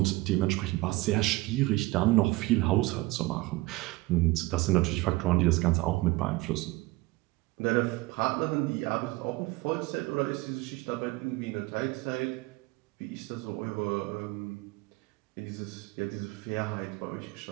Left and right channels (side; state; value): left; quieter; 20.7 dB